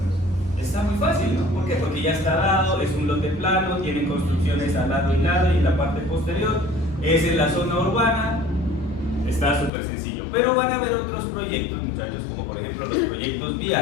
Está muy fácil, ¿no? ¿Por qué? Porque ya está dado, es un lote plano, tiene construcciones al lado y lado y en la parte posterior, es en la zona urbana, está súper sencillo. Pero van a haber otros proyectos, muchachos, como por ejemplo los proyectos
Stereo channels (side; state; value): right; drops out; at 9.7 s